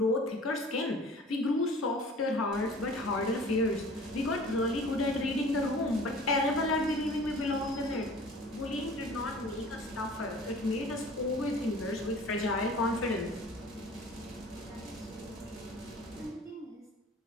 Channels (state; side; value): normal; both; correlation 0.45